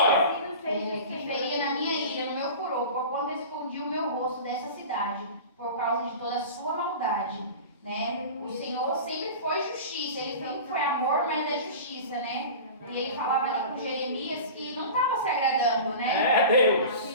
Que feria na minha ira, no meu furor, porquanto escondi o meu rosto dessa cidade, por causa de toda a sua maldade. Né? O Senhor sempre foi justiça, ele sempre foi amor, mas é justiça, né? E ele falava ali com Jeremias que não estava se agradando, né? É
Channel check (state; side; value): inverted; both; correlation -0.34